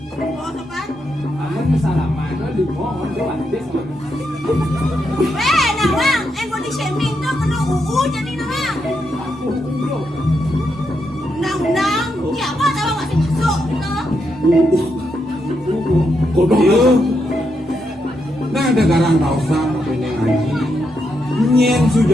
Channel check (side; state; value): both; normal; correlation 0.82